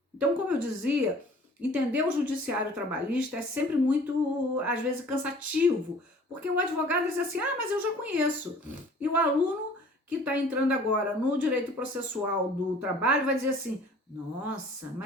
Então, como eu dizia, entender o Judiciário Trabalhista é sempre muito, às vezes, cansativo, porque o advogado diz assim, mas eu já conheço. E o aluno que está entrando agora no direito processual do trabalho vai dizer assim, nossa,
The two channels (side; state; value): both; normal; correlation 0.50